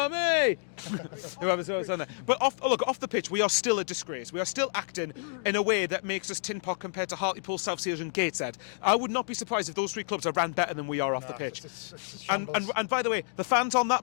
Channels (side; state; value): right; silent; digital silence